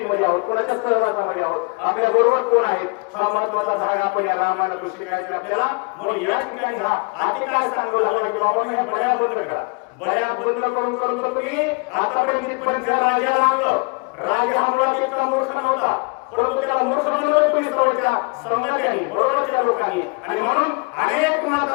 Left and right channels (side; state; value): right; quieter; 31.8 dB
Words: आहोत, कोणाच्या सहवासामध्ये आहोत, आपल्या बरोबर कोण आहेत हा महत्वाचा भाग आपण या रामायणातून शिकायचा आपल्याला. म्हणून या ठिकाणी हा आधी काय सांगू लागला की बाबा ह्या बड्या बंद करा. बड्या बंद करून करून तुम्ही आतापर्यंत इथपर्यंत राजाला आणलं. राजा हा मुळात इतका मूर्ख नव्हता परंतु त्याला मूर्ख बनवलं तुम्ही सवयच्या संघात्यांनी बरोबरच्या लोकांनी आणि म्हणून अनेक